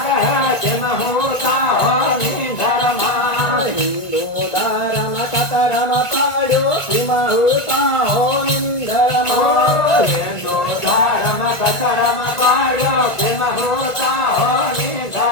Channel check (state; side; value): late; right; 1.5 ms